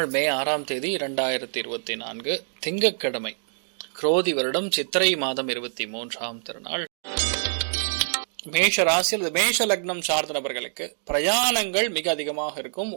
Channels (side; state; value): left; silent; digital silence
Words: மே 6ஆம் தேதி 2024 திங்கட்கிழமை, குரோதி வருடம் சித்திரை மாதம் 23ஆம் திருநாள். மேஷ ராசியில் மேஷ லக்னம் சார்ந்த நபர்களுக்கு பிரயாணங்கள் மிக அதிகமாக இருக்கும்.